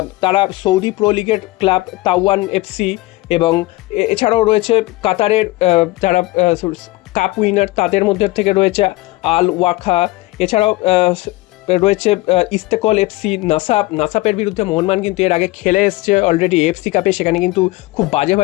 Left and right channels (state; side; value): quieter; right; 20.2 dB